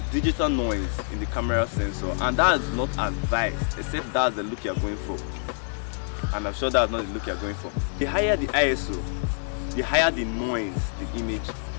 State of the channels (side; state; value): right; silent; digital silence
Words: digital noise in the camera sensor, and that is not advised, except that's the look you're going for. And I'm sure that's not the look you're going for. The higher the ISO, the higher the noise the image